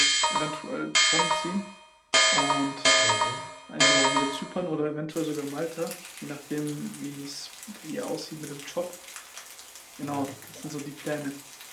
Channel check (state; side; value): identical; both; correlation 1.00